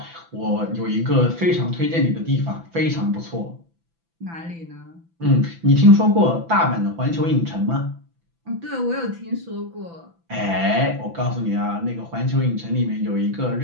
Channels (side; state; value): left; late; 6.0 ms